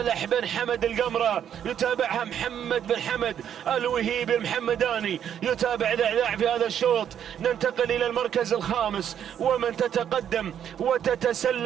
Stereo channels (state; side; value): quieter; left; 9.3 dB